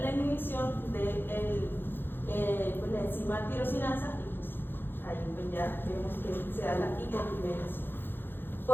inhibición de pues, la enzima tirosinasa y pues ahí pues ya vemos que se da la hipopigmentación.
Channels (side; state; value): right; late; 0.10 ms